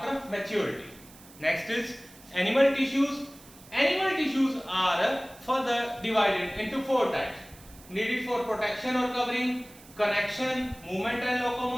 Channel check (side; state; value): right; noise; hiss, 22 dB below the sound